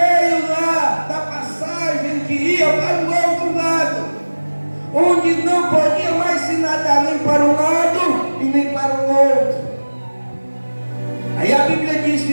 lá da passagem que ia para o outro lado, onde não podia mais se nadar nem para um lado e nem para o outro, aí a Bíblia diz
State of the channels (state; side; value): inverted; both; correlation -1.00